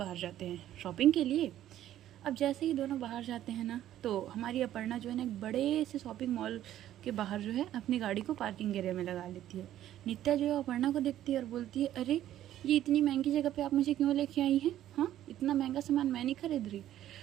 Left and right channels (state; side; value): quieter; left; 12.4 dB